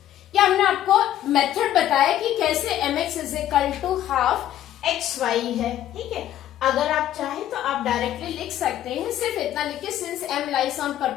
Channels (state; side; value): quieter; right; 12.1 dB